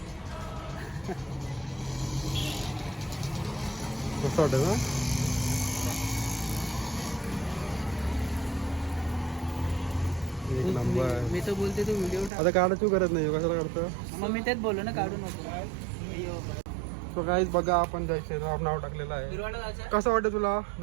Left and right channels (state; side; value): drops out; left; at 12.3 s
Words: कसं वाटतं ना. एक नंबर. मी तर बोलते तू व्हिडिओ आता काढायची गरज नाही. कशाला काढतं. मग मी तेच बोललो ना काढू नको. सो गाईज बघा आपण जय श्रीराम नाव टाकलेलं आहे. कसं वाटतं तुला